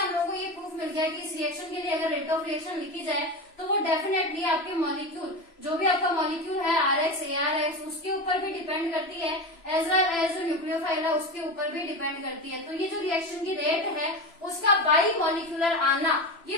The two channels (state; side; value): late; right; 3.0 ms